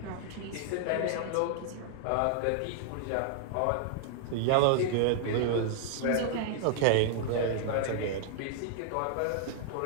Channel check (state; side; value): different; both; correlation -0.01